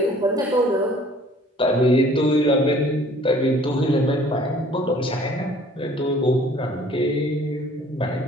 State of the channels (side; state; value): both; normal; correlation 0.54